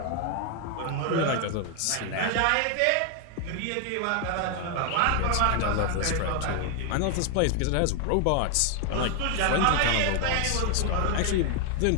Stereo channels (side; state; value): both; different; correlation 0.00